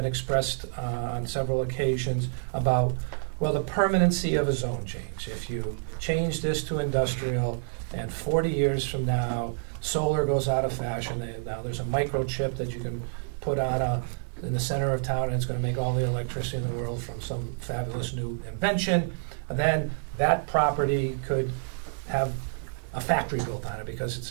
expressed on several occasions about, the permanency of a zone change. If you change this to industrial and 40 years from now, solar goes out of fashion, now there's a microchip that you can put on in the center of town and it's going to make all the electricity in the world from some fabulous new invention, then that property could have a factory built on it because it's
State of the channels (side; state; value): left; silent; digital silence